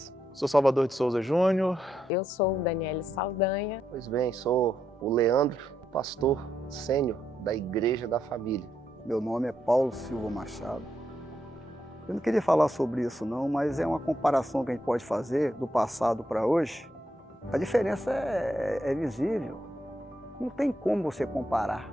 Sou Salvador de Souza Júnior. Eu sou Daniele Saldanha. Pois bem, sou o Leandro, pastor sênior da Igreja da Família. Meu nome é Paulo Silva Machado. Eu não queria falar sobre isso não, mas é uma comparação que a gente pode fazer do passado para hoje. A diferença é visível, não tem como você comparar.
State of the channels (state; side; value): normal; both; correlation 0.80